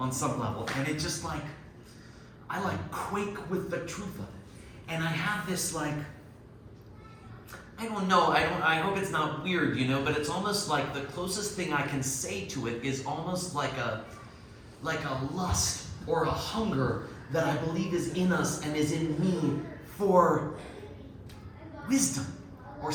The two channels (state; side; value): identical; both; correlation 1.00